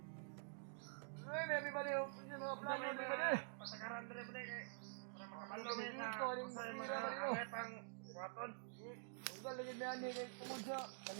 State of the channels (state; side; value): silent; left; digital silence